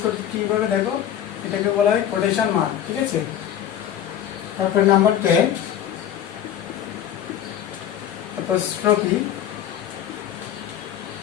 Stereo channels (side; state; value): right; quieter; 10.3 dB